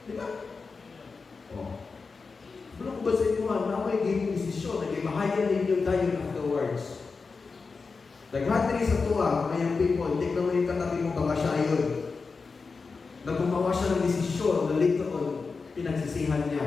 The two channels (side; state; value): right; quieter; 4.6 dB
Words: Di ba? Oh. Wala ko ba sa inyo na may giving desisyon, nag-imahayan ninyo tayo afterwards. Naghatri sa tuwa, ngayong people, tignan mo yung katabi mo, baka siya yun. Nagpumawa siya ng desisyon na later on, pinagsisihan